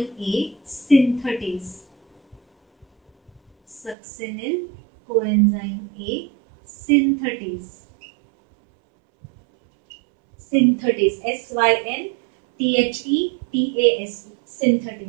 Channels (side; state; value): left; drops out; at 4.0 s